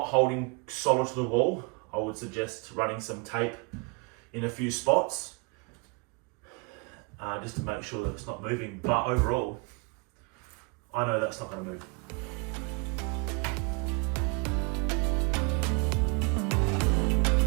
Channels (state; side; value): quieter; left; 32.4 dB